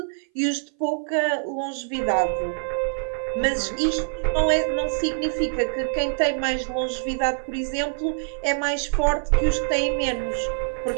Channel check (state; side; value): silent; left; 58 dB below the other